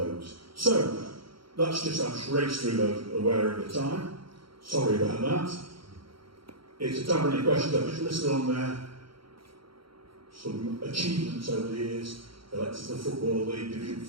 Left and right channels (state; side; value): late; left; 0.74 ms